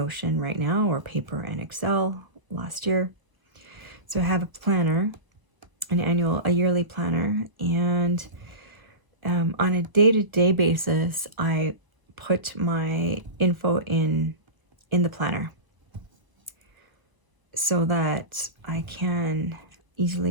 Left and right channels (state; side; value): late; left; 1.0 ms